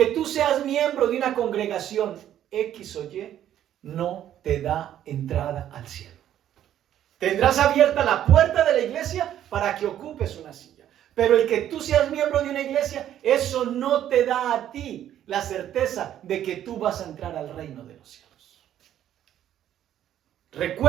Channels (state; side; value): quieter; left; 11.2 dB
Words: tú seas miembro de una congregación X o Y no te da entrada al cielo. Tendrás abierta la puerta de la iglesia para que ocupes una silla. Pero el que tú seas miembro de una iglesia, eso no te da a ti la certeza de que tú vas a entrar al reino de los cielos.